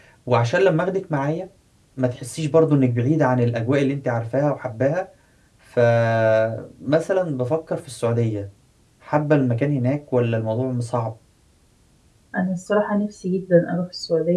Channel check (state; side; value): identical; both; correlation 1.00